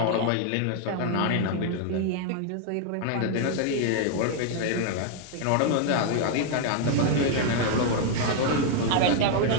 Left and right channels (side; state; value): both; different; correlation 0.00